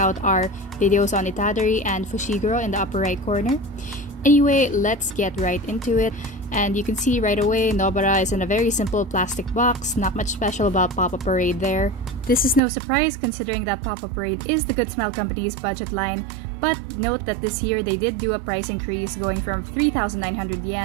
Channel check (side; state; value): left; drops out; at 12.6 s